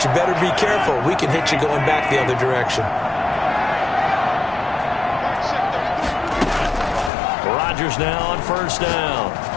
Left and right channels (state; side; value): drops out; right; at 7.1 s